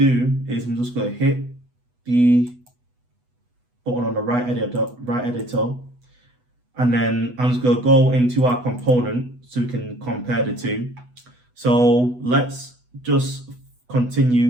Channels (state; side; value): late; left; 8.1 ms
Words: is I'm just going to hit the button on the right editor, and then I'm just going to go into our component so we can compare the two. So let's just continue